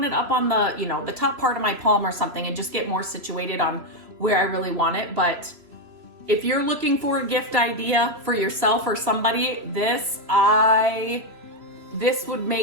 it up on the, you know, the top part of my palm or something and just get more situated on where I really want it. But if you're looking for a gift idea for yourself or somebody, this would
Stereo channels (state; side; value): late; left; 3.0 ms